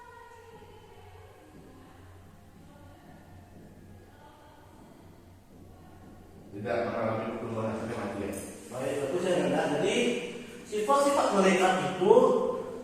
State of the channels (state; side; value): identical; both; correlation 1.00